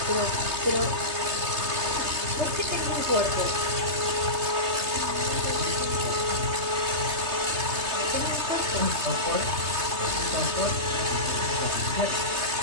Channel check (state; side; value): late; left; 3.3 ms